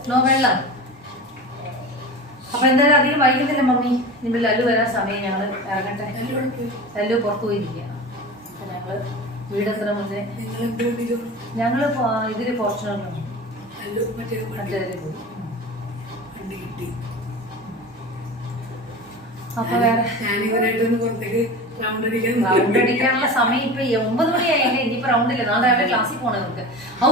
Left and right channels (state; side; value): normal; both; correlation 0.31